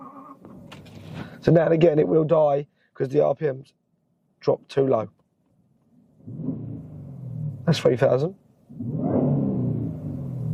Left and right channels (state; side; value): identical; both; correlation 1.00